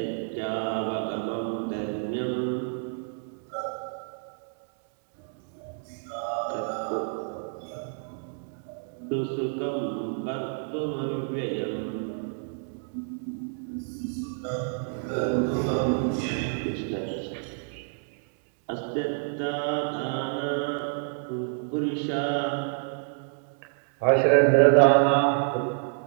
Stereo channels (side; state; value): left; silent; 59 dB below the other